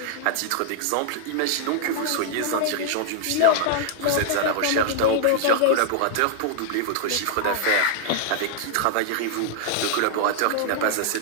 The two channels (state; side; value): different; both; correlation -0.01